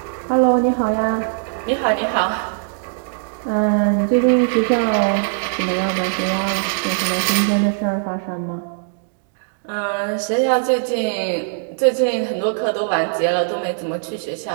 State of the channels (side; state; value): left; silent; digital silence